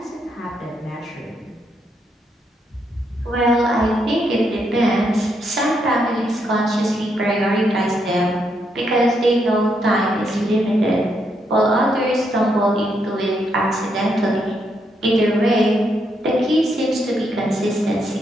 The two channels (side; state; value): both; normal; correlation 0.78